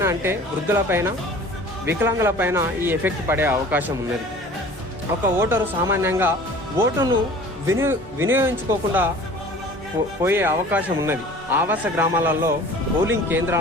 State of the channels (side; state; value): both; normal; correlation 0.45